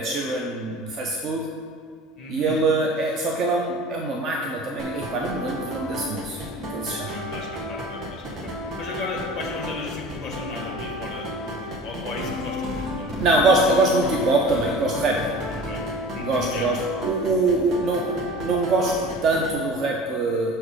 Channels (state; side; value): normal; both; correlation 0.40